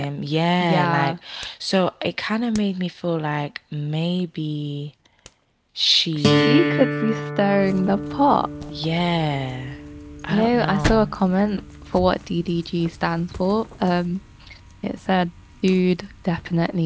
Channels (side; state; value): both; identical; correlation 1.00